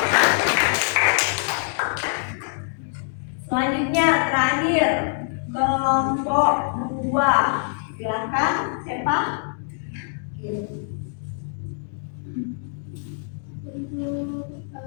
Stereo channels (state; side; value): silent; right; 62 dB below the other